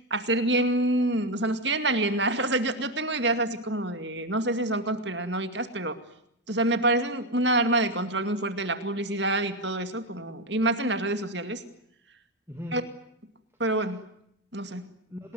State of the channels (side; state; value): both; normal; correlation 0.09